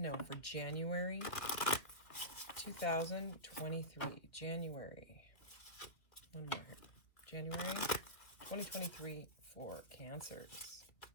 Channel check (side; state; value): right; late; 2.3 ms